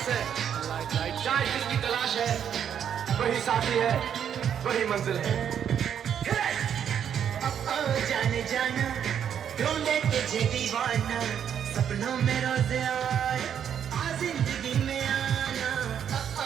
से। चाहे जिसकी तलाश है वही साथी है, वही मंजिल है। जाने जाना ढूंढे तुझे दीवाना, सपनों में रोज आए आ जिंदगी में आना।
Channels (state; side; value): quieter; left; 8.8 dB